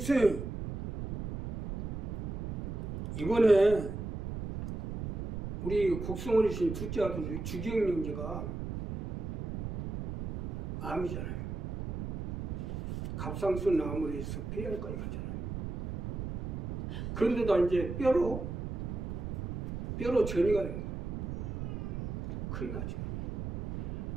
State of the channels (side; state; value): right; noise; rumble, 5 dB below the sound